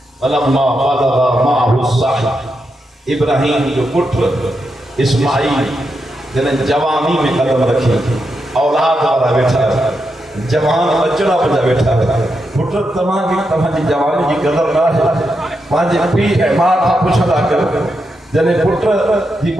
इब्राहिम जो पुत्र इस्माइल जने जवानी में कदम रखी औलाद वाला बैठा जवान बचड़ा बजा बैठा पुत्र तव्हांजी जवानी की कदर ना है पंहिंजे पीउ ऐं माउ खां पुछंदा कयो जॾहिं पुट जी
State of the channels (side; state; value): both; normal; correlation 0.85